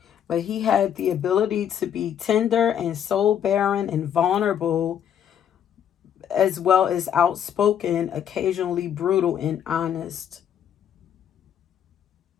But he had the ability to be tender and soul barren and vulnerable, as well as outspoken, occasionally brutal and honest.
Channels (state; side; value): quieter; right; 9.2 dB